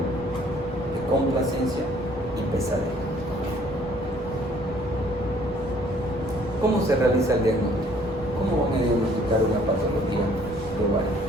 complacencia y pesadez. ¿Cómo se realiza el diagnóstico? ¿Cómo van a diagnosticar una patología de ovario?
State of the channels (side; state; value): both; normal; correlation 0.59